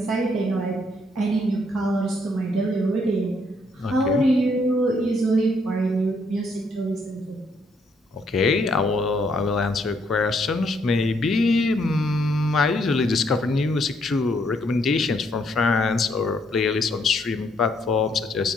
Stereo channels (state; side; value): normal; both; correlation 0.71